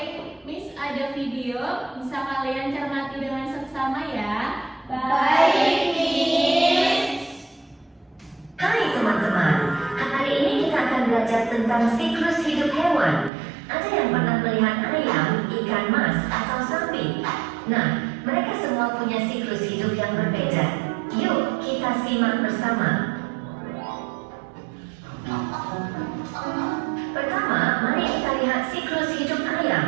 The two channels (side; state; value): left; drops out; at 13.3 s